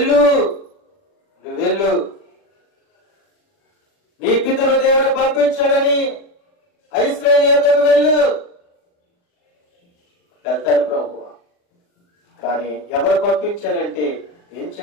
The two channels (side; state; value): right; late; 40 ms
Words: నీ పితరు దేవుడు పంపించాడని ఇశ్రాయేలు యొద్దకు వెళ్ళు. వెళ్తారు ప్రభువా, కానీ ఎవరు పంపించాలంటే ఏం